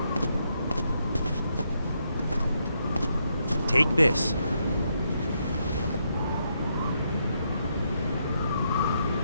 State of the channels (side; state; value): both; inverted; correlation -0.79